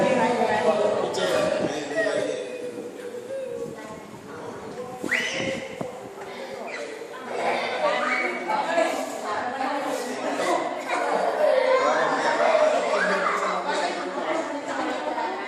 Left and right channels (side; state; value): both; identical; correlation 1.00